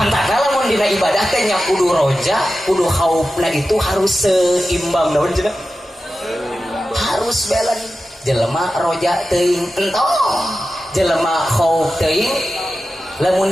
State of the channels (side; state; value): both; normal; correlation 0.93